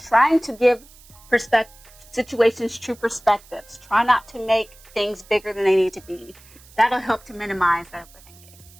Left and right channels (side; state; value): right; noise; hiss, 24 dB below the sound